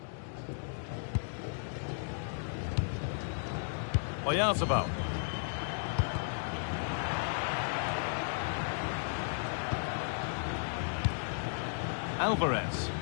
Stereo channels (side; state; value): right; silent; digital silence